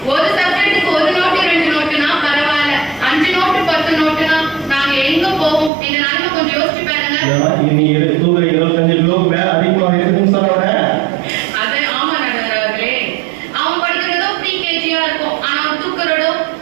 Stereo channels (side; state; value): left; drops out; at 5.7 s